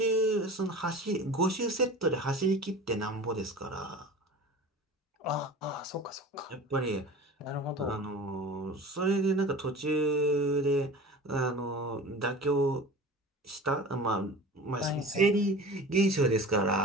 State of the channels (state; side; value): normal; both; correlation 0.37